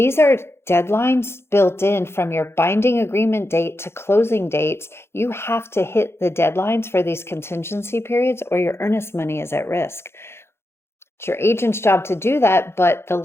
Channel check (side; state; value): right; late; 0.12 ms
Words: are deadlines built in from your binding agreement date to closing dates. You have to hit the deadlines for these contingency periods or your earnest money is at risk. It's your agent's job to do that, but the